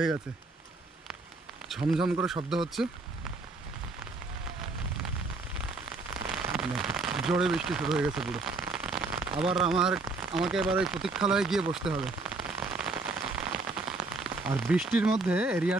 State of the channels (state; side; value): quieter; left; 3.5 dB